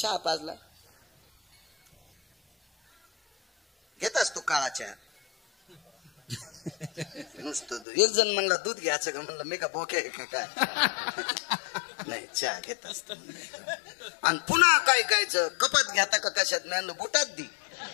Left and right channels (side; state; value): right; drops out; at 7.9 s